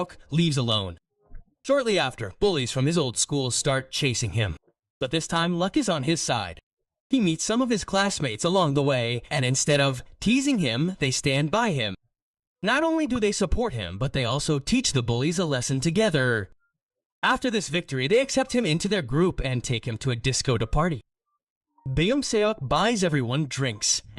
leaves alone. Shortly after, bullies from his old school start chasing him. But this time, luck is on his side. He meets some of his classmates along the way, and instead of teasing him, they stand by him. Not only do they support him, but they also teach the bullies a lesson together. After this victory, they accept him into their group and take him to a disco to party. Beom-sak buys everyone drinks,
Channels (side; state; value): both; identical; correlation 1.00